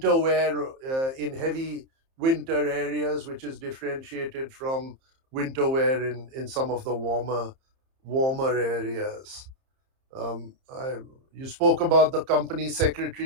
wear in heavy winter areas, which is differentiated from winter wear in some of the warmer areas. You spoke about the company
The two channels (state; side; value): late; left; 30 ms